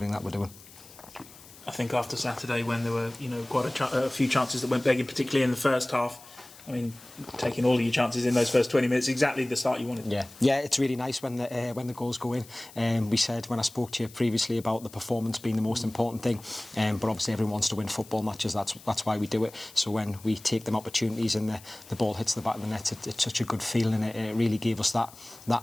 that we're doing. I think after Saturday, when there were quite a few chances that went begging, particularly in the first half, I mean, taking all of your chances in those first 20 minutes, exactly the start you wanted. Yeah, it's really nice when the goals go in. We said when I spoke to you previously about the performance being the most important thing, but obviously everyone wants to win football matches. That's why we do it. So when we take them opportunities and the ball hits the back of the net, it's such a good feeling, and it really gave us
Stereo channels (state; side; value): noise; left; hiss, 21 dB below the sound